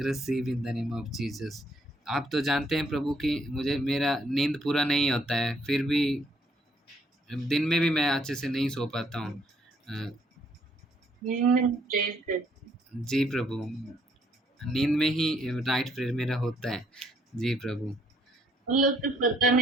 in the name of Jesus. आप तो जानते हैं प्रभु कि मुझे मेरा नींद पूरा नहीं होता है, फिर भी दिन में भी मैं अच्छे से नहीं सो पाता हूँ। जी प्रभु, नींद में ही नाइट प्रेयर मेरा होता है। जी प्रभु। उन लोग तो पता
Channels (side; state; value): both; normal; correlation 0.68